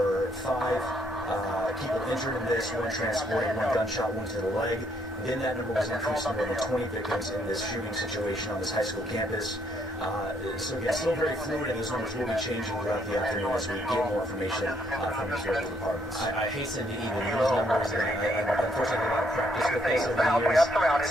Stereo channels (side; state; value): both; normal; correlation 0.70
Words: 5 people injured in this, 1 transported, 1 gunshot wound to the leg. Then that number was increased to more than 20 victims in this shooting situation on this high school campus. So again, still very fluid, and those numbers will be changing throughout the afternoon as we get more information from these local departments. I hasten to even use numbers, and I unfortunately have a lot of practice with this over the years,